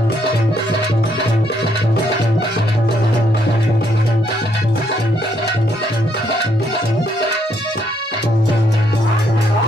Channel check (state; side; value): normal; both; correlation 0.72